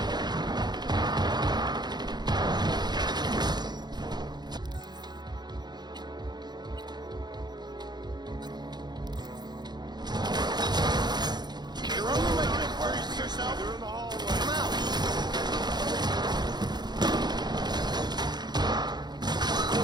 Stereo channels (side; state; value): left; late; 0.21 ms